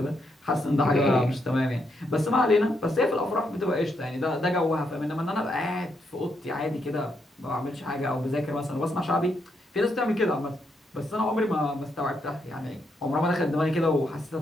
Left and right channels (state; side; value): normal; both; correlation 0.79